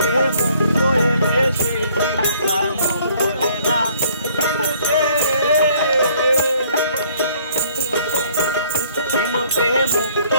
মুক্ত এলে সেই ঝিনুকার মুখ বলে না। ঝিনুকে মুক্ত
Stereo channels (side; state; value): both; inverted; correlation -0.60